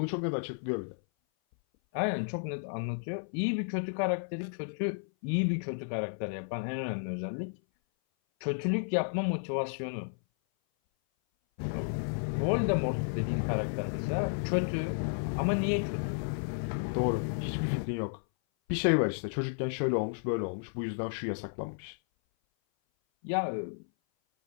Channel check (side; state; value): right; silent; 56 dB below the other